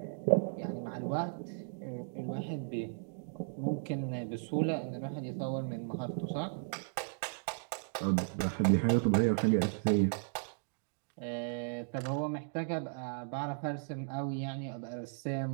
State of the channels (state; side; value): silent; left; digital silence